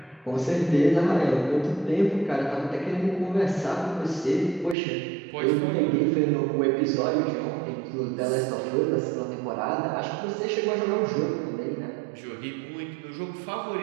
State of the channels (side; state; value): left; drops out; at 4.8 s